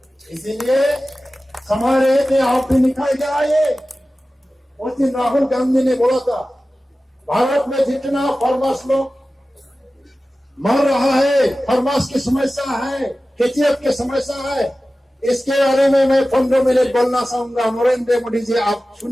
इसीलिए हमारे में आप भी निकाल के आए। उस दिन राहुल गांधी ने बोला था भारत में जितना फार्मर्स लोग मर रहा है, फार्मर्स की समस्या है, केचीएफ की समस्या है, इसके बारे में मैं 15 मिनट बोलना चाहूंगा। नरेंद्र मोदी जी आप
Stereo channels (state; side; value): normal; both; correlation 0.96